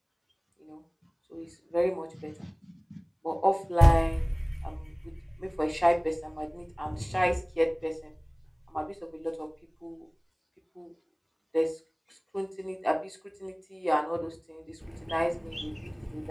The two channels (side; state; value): both; identical; correlation 1.00